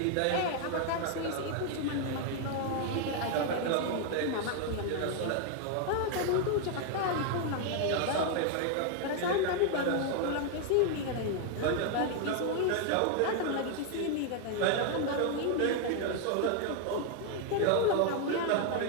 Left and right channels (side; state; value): both; different; correlation 0.00